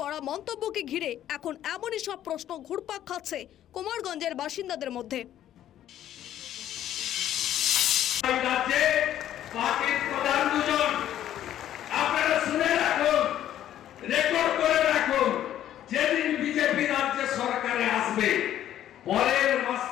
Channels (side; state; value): right; quieter; 11.7 dB